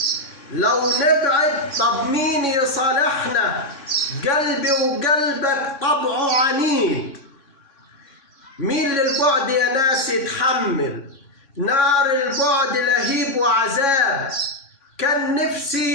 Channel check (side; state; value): right; late; 3.6 ms